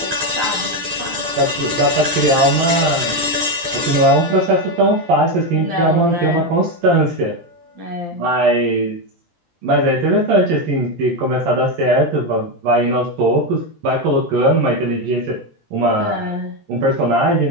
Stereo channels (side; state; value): left; late; 11 ms